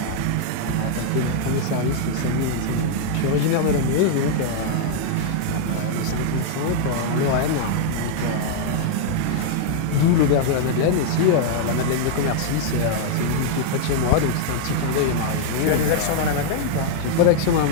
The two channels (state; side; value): different; both; correlation -0.01